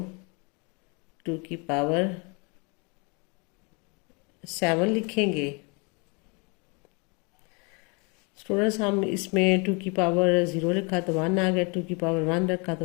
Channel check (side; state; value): right; quieter; 31.7 dB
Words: 2 की पावर 7 लिखेंगे। स्टूडेंट्स हम इसमें 2 की पावर 0 लिखा तो 1 आ गया, 2 की पावर 1 रखा